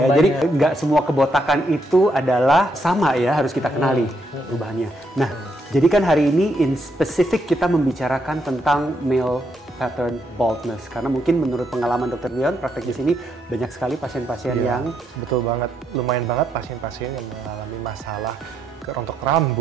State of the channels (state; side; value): normal; both; correlation 0.77